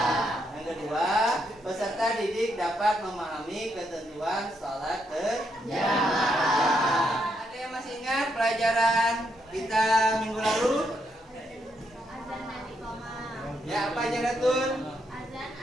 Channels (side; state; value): both; normal; correlation 0.78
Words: Yang kedua, peserta didik dapat memahami ketentuan salat berjamaah. Ada yang masih ingat pelajaran kita minggu lalu? Azan dan iqamah. Ya, apa aja Ratun? Azan